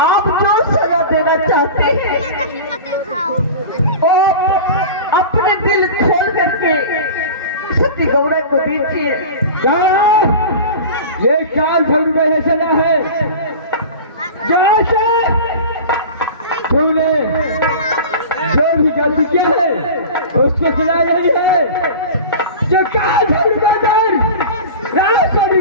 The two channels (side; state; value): both; inverted; correlation -0.34